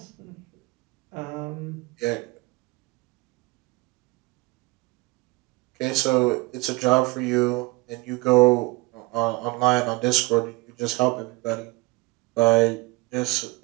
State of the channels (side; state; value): left; quieter; 23.5 dB